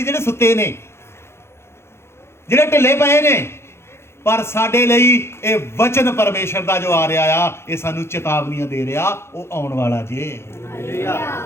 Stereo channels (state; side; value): late; right; 0.12 ms